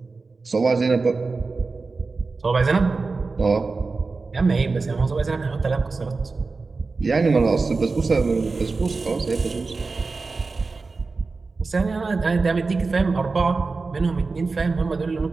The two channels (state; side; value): quieter; left; 4.0 dB